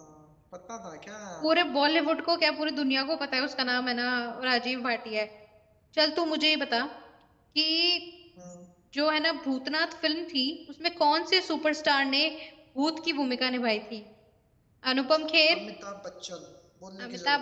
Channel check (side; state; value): both; identical; correlation 1.00